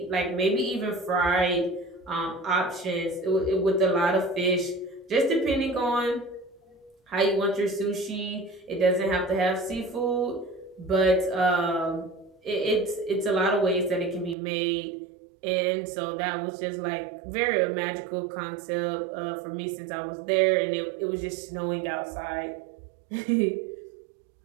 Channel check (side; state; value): left; drops out; at 14.4 s